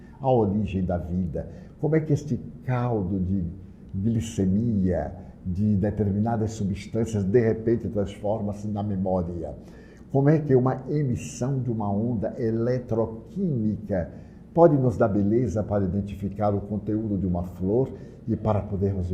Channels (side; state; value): both; identical; correlation 1.00